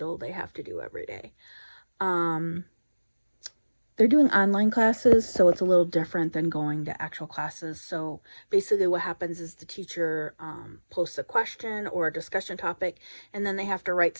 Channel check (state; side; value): inverted; both; correlation -1.00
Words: they have to do every day. Um, they're doing online classes, so it's a little different than going to actual classes. So basically what happens is the teacher posts a question or a discussion topic, and then they have to